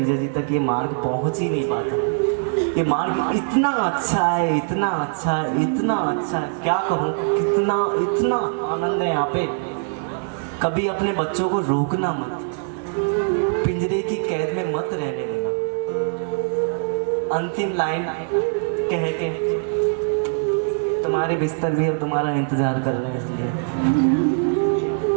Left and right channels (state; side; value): silent; left; 64 dB below the other